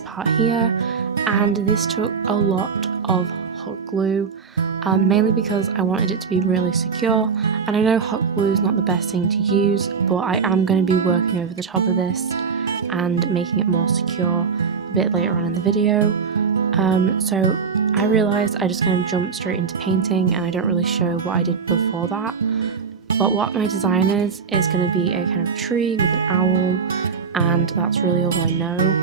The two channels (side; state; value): left; quieter; 5.8 dB